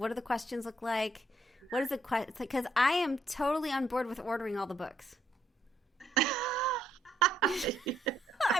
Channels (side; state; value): both; normal; correlation 0.71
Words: do the questions look like? What is the question? Because I am totally on board with ordering all the books.